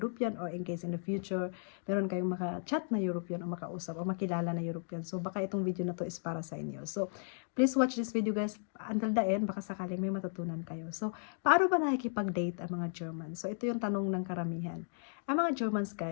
or in case in the future, meron kayong maka-chat na European o makausap o makilala na European. So baka itong video na to is para sa inyo. So please watch this video guys until the end, baka sakaling may matutunan kayo. So paano ba nakikipag-date ang mga German? So ito yung tanong ng karamihan. Ang mga Germans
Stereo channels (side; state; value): right; silent; digital silence